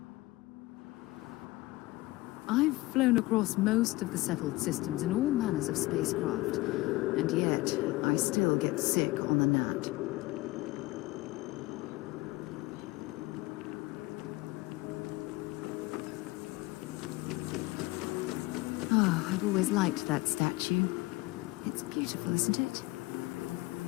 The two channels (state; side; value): quieter; right; 20.3 dB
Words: I've flown across most of the settled systems in all manners of spacecraft, and yet I still get sick on the gnat. Oh, I've always liked that statue. It's beautiful, isn't it?